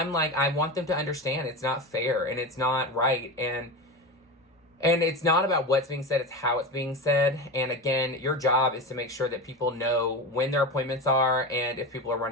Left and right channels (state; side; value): normal; both; correlation 0.23